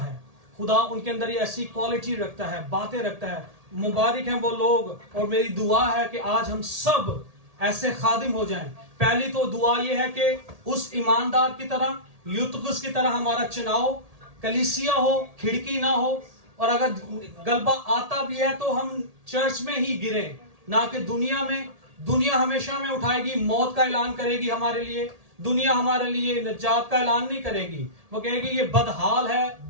खुदा उनके अंदर ये ऐसी क्वालिटी रखता है, बातें रखता है। मुबारक हैं वो लोग, और मेरी दुआ है कि आज हम सब ऐसे खादिम हो जाएं। पहली तो दुआ ये है कि उस ईमानदार की तरह, यूतुकुस की तरह हमारा चुनाव कलीसिया हो, खिड़की ना हो, और अगर गलबा आता भी है तो हम चर्च में ही गिरे, ना कि दुनिया में। दुनिया हमेशा में उठाएगी, मौत का ऐलान करेगी हमारे लिए, दुनिया हमारे लिए निजात का ऐलान नहीं करेगी। वो कहेगी ये बदहाल है,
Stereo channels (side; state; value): left; late; 1.8 ms